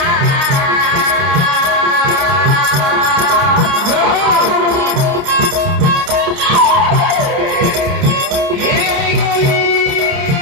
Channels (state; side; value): late; left; 29 ms